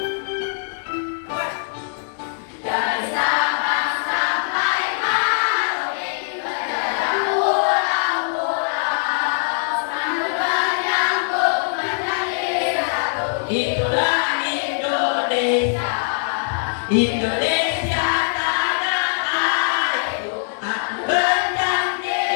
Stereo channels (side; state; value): right; silent; digital silence